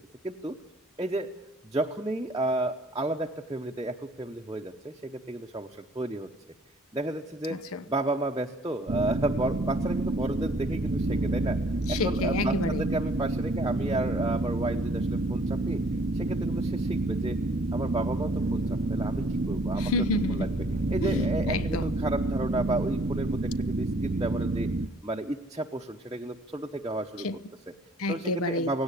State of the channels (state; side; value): normal; both; correlation 0.59